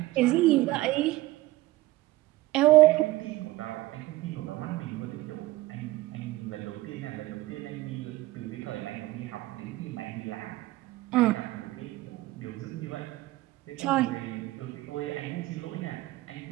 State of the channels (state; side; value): quieter; left; 18.3 dB